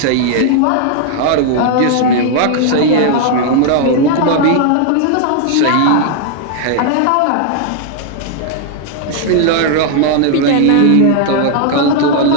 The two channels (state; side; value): different; both; correlation 0.00